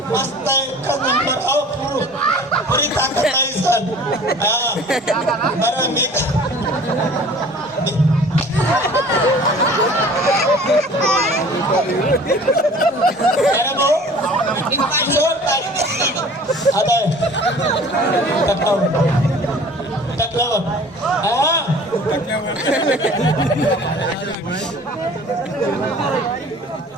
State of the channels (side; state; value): both; normal; correlation 0.47